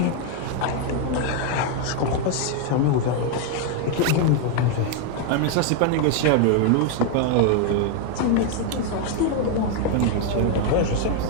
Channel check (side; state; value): both; different; correlation 0.01